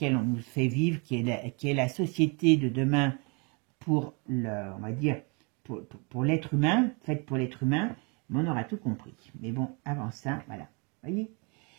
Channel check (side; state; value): left; quieter; 32.1 dB